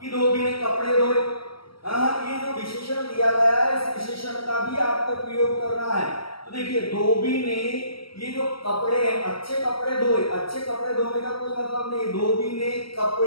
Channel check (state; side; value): late; right; 0.75 ms